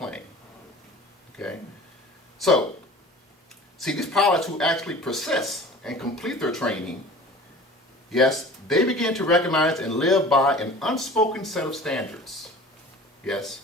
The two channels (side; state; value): both; normal; correlation 0.42